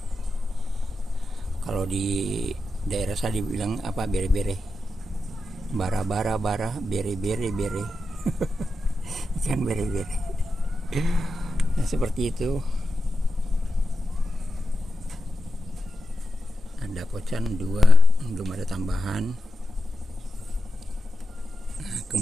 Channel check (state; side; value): normal; both; correlation 0.91